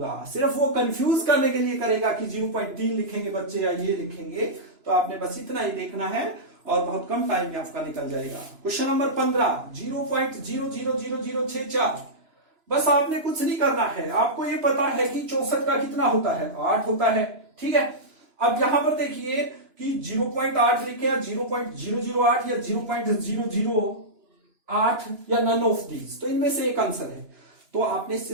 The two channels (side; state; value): left; late; 2.9 ms